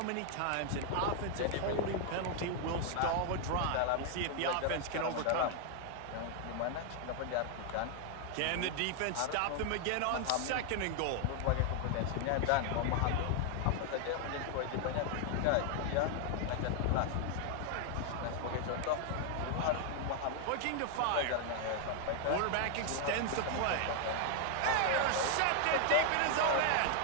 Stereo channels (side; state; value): both; different; correlation 0.00